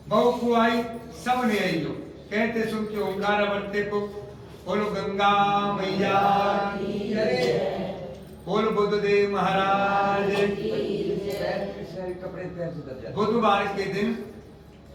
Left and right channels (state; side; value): identical; both; correlation 1.00